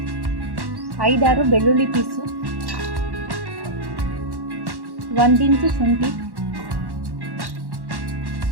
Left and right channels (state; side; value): late; left; 1.1 ms